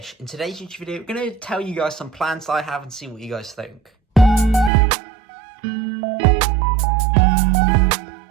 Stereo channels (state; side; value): drops out; left; at 4.7 s